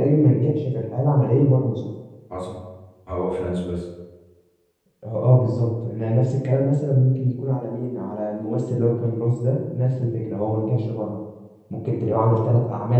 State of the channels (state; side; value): identical; both; correlation 1.00